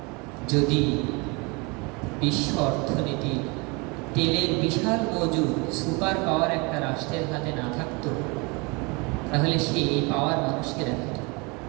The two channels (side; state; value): left; quieter; 28.4 dB